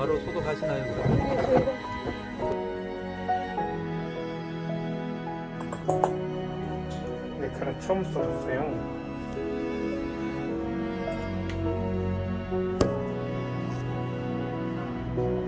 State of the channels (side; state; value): both; identical; correlation 1.00